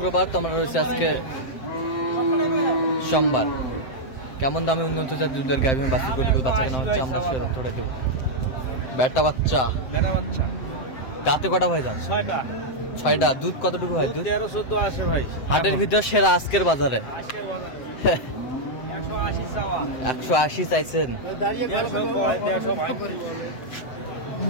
তো আমরা রয়েছে আজকে সোমবার। কেমন দামে উন্নত দুধের গাভী বাচ্চা কেনা হচ্ছে আমরা সে তথ্যটা দেবো। বেটা বাচ্চা দাঁতে কটা ভাই যান? 6টা। দুধ কতটুকু হয়? দুধ 13-14 আসে ভাই। হাটের ভিতর সেরা আজকের বাজারে 180 চাইছেন।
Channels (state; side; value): late; right; 7.7 ms